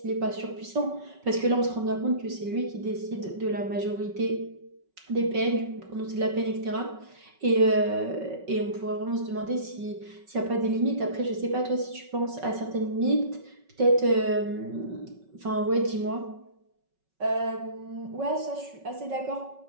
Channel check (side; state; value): left; late; 5.3 ms